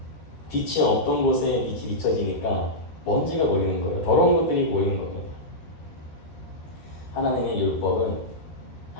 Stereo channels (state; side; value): late; right; 13 ms